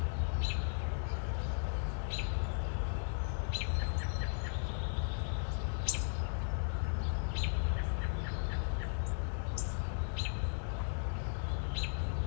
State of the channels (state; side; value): silent; right; digital silence